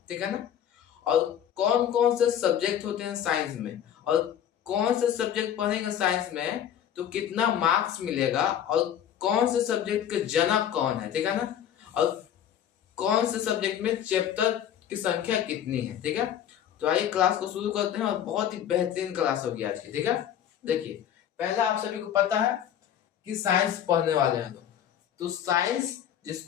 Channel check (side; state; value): right; quieter; 9.9 dB